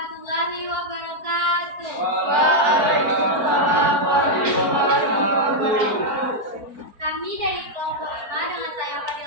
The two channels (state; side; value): late; left; 4.4 ms